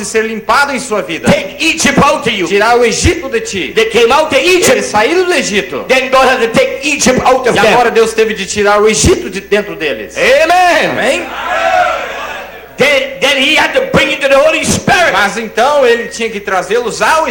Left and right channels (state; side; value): identical; both; correlation 1.00